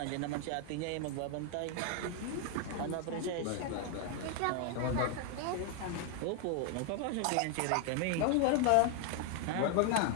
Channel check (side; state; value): both; different; correlation 0.00